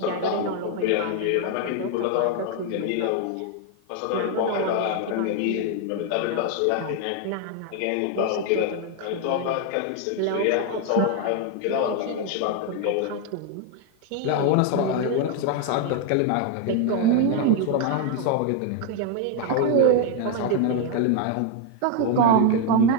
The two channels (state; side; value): different; both; correlation 0.01